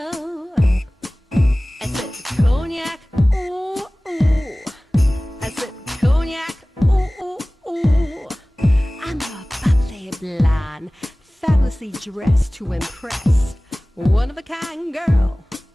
I said Cognac, ooh, ooh. I said Cognac, ooh, ooh, ooh. I'm a bubbly blonde, fabulously dressed to impress. One of a kind girl.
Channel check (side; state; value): both; normal; correlation 0.98